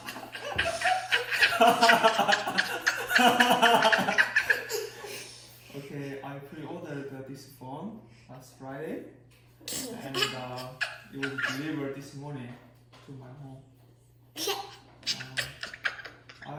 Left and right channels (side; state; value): both; identical; correlation 1.00